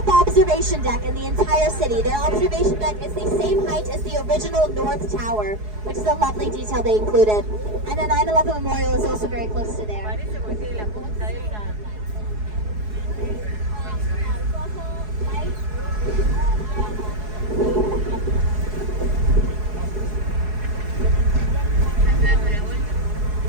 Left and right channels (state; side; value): late; left; 4.7 ms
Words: observation deck in the entire city. Their observation deck is the same height as the original North Tower, which is a lovely detail they included. And the 9/11 Memorial is also very close to there. Parece porque tiene la punta de una.